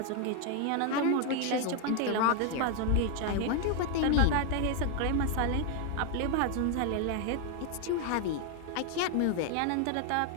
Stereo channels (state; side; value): different; both; correlation 0.01